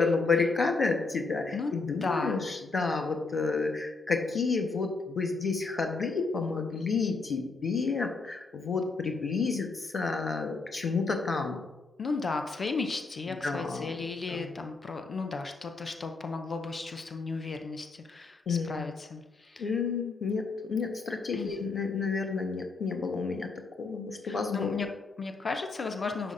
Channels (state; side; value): quieter; right; 4.0 dB